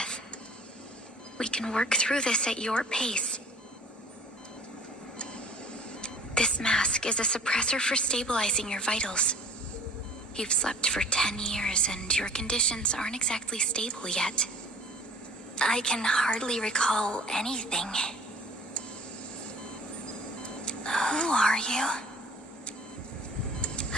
We can work through this at your pace. This mask is a suppressor for stabilizing your vitals. You've slept for 10 years and your conditions aren't exactly stable yet. I can hardly recall anything. Who are you?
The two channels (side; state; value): both; normal; correlation 0.50